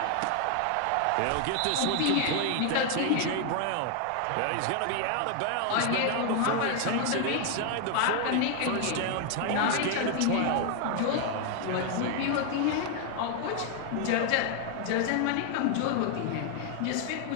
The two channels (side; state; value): both; different; correlation 0.00